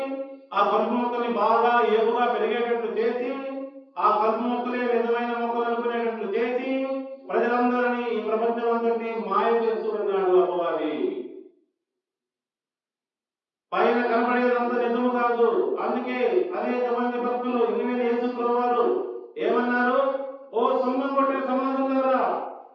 ఆ కలుపు మొక్కల్ని బాగా ఏపుగా పెరిగేటట్లు చేసి, ఆ కలుపు మొక్కలే నిజమైన మొక్కలు అనుకునేటట్లు చేసి ప్రజలందరినీ, ఈ ప్రపంచం అందరినీ మాయ చేస్తూ ఉన్నాడు అపవాది. పైన కనబడేదంతా నిజము కాదు. అందుకే అనేక మంది భక్తులు ఇనిమిది యేసుప్రభువు వారు ఏమన్నారు? ఓ సున్నం కొట్టిన సమాజంలారా,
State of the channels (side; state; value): both; identical; correlation 1.00